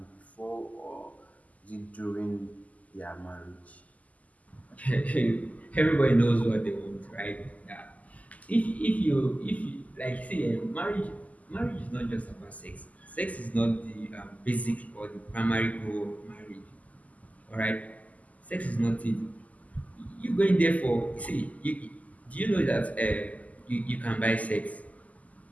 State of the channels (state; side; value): late; right; 0.075 ms